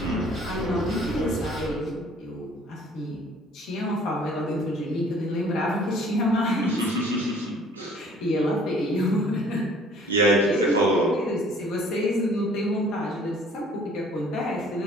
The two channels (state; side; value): normal; both; correlation 0.55